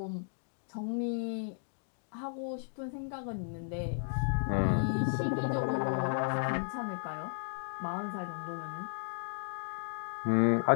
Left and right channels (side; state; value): right; silent; digital silence